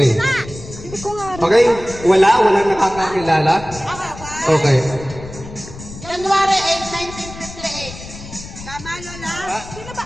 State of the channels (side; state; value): left; noise; rumble, 14 dB below the sound